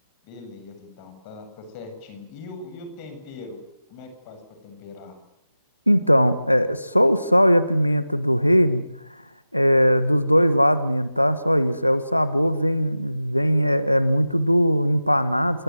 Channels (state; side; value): inverted; both; correlation -0.95